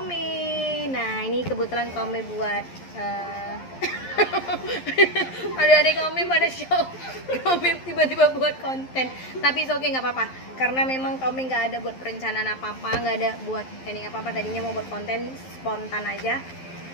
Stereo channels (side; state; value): right; late; 11 ms